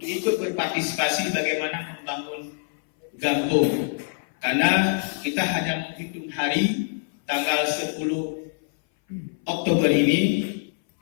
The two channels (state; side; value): silent; right; 59 dB below the other